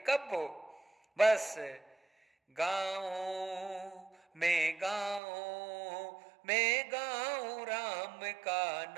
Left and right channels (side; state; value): left; drops out; at 5.2 s